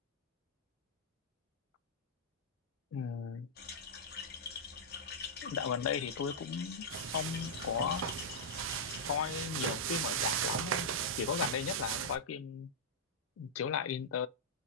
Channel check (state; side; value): normal; both; correlation -0.10